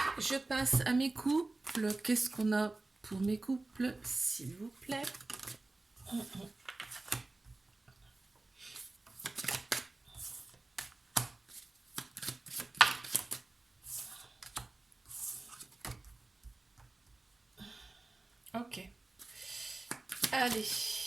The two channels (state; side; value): quieter; left; 3.2 dB